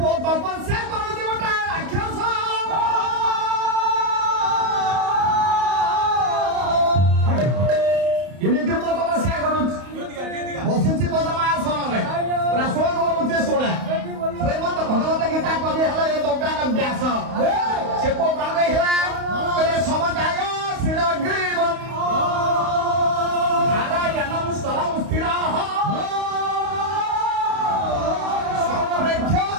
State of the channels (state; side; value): late; left; 31 ms